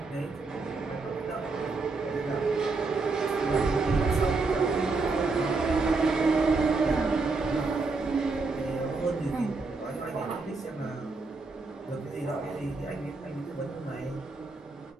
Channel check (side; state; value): left; quieter; 3.9 dB